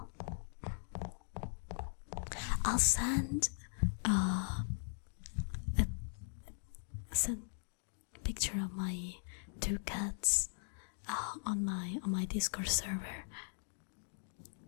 I'll send send a picture of my 2 cats on my Discord server.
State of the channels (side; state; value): right; silent; digital silence